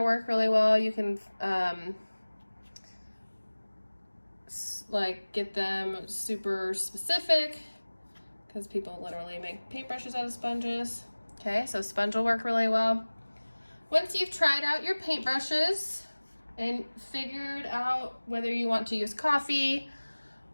work really well. You can like get them super specific because people literally make paintbrushes out of sponges. Okay, so sponge will work really well. Once you've tried out your paintbrushes and figured out whether you want to use coffee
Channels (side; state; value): both; inverted; correlation -1.00